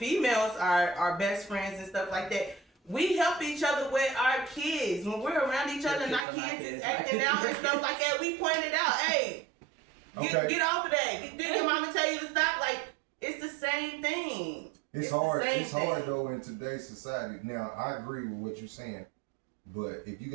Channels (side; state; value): left; drops out; at 6.2 s